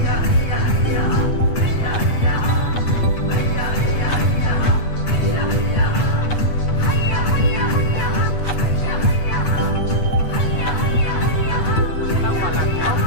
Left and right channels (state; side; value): late; right; 8.2 ms